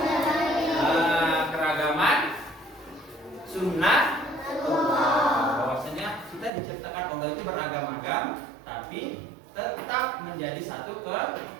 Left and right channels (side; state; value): left; drops out; at 6.5 s